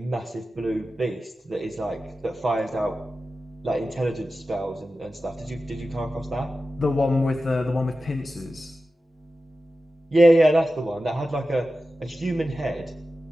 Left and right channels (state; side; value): normal; both; correlation 0.93